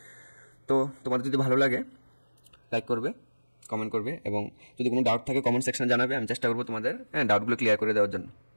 তো তোমাদের যদি ভালো লাগে লাইক করবে, কমেন্ট করবে, এবং যদি কোনো ডাউট থাকে কমেন্ট সেকশনে জানাবে। আমি চেষ্টা করবো তোমাদের ডাউটগুলো ক্লিয়ার করে দেওয়ার জন্য।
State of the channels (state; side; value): inverted; both; correlation -1.00